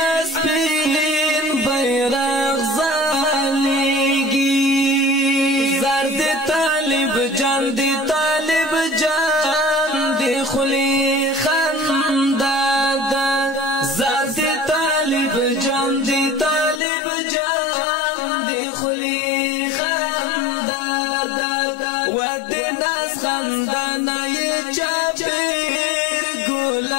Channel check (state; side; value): drops out; right; at 16.8 s